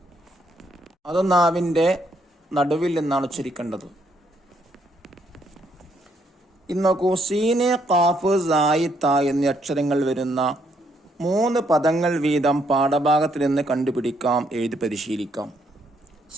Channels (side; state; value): both; normal; correlation 0.72